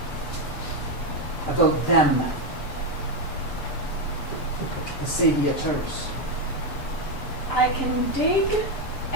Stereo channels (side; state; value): right; late; 6.8 ms